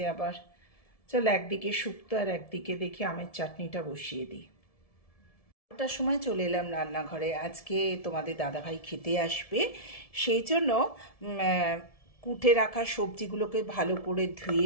আবার। চল, একদিকে শুক্তো আর একদিকে দেখি আমের চাটনিটা বসিয়ে দিই। ওটার সময় চলে এলাম রান্নাঘরে। আজকে তোমাদের দাদাভাই খেতে আসবে, সেই জন্য কুটে রাখা সবজিগুলোকে ভালো করে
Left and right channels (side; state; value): right; late; 1.7 ms